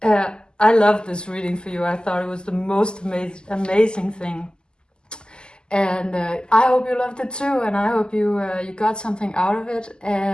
I love this reading for you. I thought it was the most amazing thing. And I hope you loved it too, and I hope you got something out of it.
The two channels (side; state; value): right; late; 0.047 ms